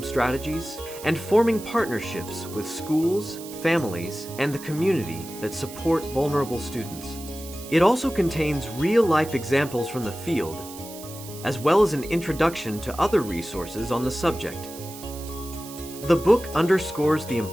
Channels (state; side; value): noise; right; hiss, 15 dB below the sound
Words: strategies, and forming partnerships with schools, families, and the community that support vulnerable students. It also contains real-life examples from the field, as well as an introduction to other resources on the subject. The book underscores the